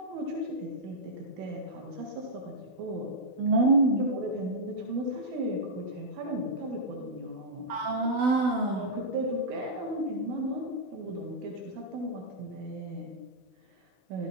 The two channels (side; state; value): left; late; 16 ms